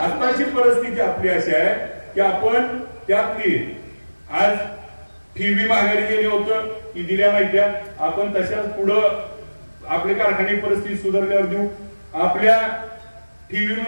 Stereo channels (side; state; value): both; inverted; correlation -1.00